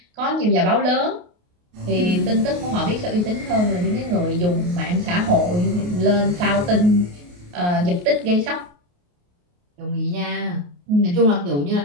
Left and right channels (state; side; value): late; left; 28 ms